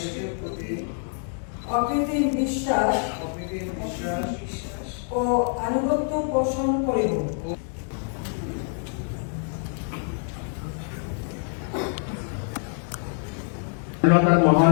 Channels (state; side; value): silent; right; 56 dB below the other